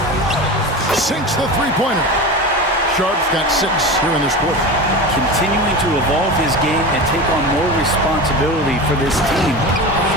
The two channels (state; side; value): normal; both; correlation 0.28